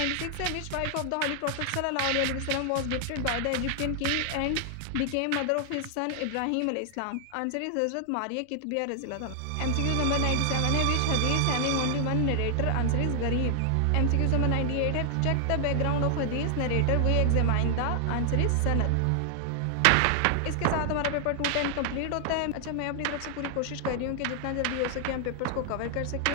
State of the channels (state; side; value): different; both; correlation 0.00